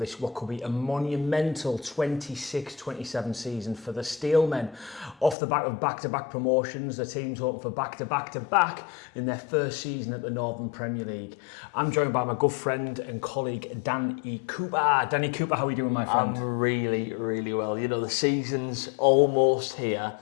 what could be a monumental 26-27 season for the Steelmen. Off the back of back-to-back promotions, the team's hoping for back-to-back in their first season at the Northern Premier League. I'm joined by my good friend and colleague Danny Cooper. Danny Cooper, how are you doing, my friend? I'm really well. You know, the season's almost here.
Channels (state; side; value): drops out; right; at 5.4 s